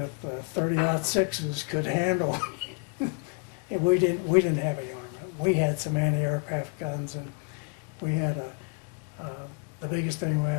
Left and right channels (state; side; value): quieter; right; 37.4 dB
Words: could handle. And we didn't have any armament. We had some anti-aircraft guns, and we had the biggest thing we